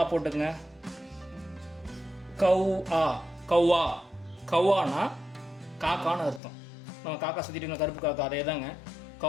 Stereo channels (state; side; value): drops out; right; at 6.4 s